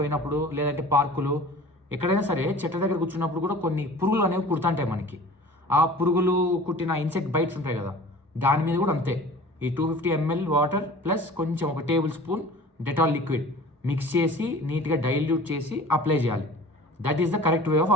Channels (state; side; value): normal; both; correlation 0.43